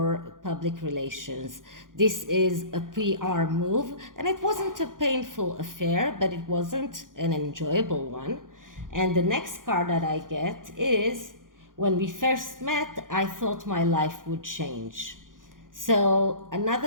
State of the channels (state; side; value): late; left; 0.90 ms